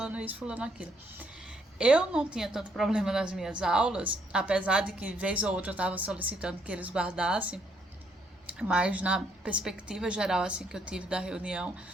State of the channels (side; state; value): both; normal; correlation 0.71